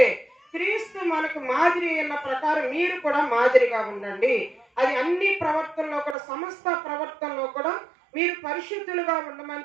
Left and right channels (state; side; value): drops out; left; at 6.2 s